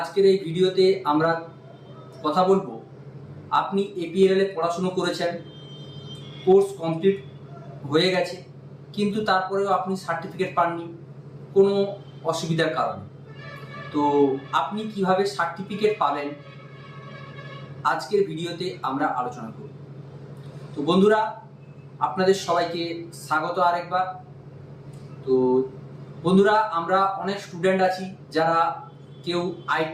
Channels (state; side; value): identical; both; correlation 1.00